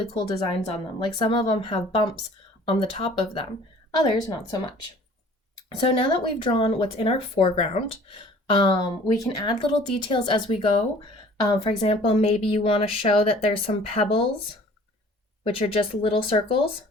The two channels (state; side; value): normal; both; correlation 0.50